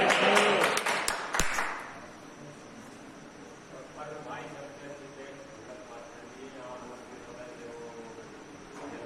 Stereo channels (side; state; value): both; identical; correlation 1.00